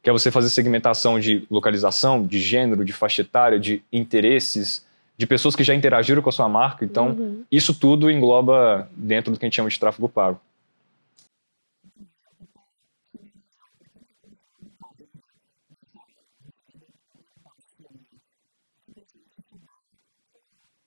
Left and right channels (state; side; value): inverted; both; correlation -1.00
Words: que é você fazer segmentação de localização, de gênero, de faixa etária, de interesses, de pessoas que já interagiram com a sua marca. Então isso tudo engloba dentro do que a gente chama de tráfego pago. Incrível. E para finalizar, para quem quer construir uma carreira nessa área, você diria que o primeiro passo seria simplesmente estudar ou